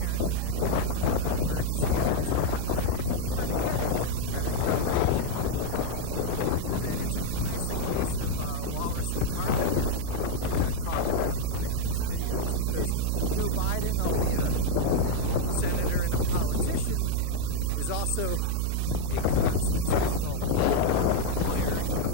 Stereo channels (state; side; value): different; both; correlation 0.00